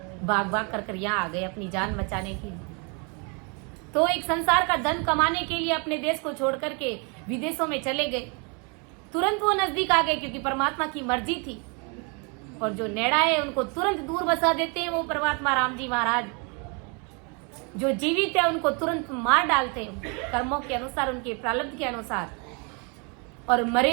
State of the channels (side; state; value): left; quieter; 33.9 dB